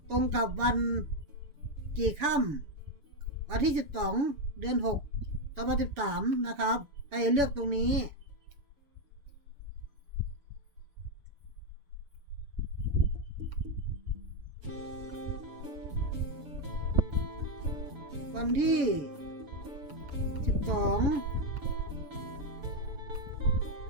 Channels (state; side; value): late; left; 7.0 ms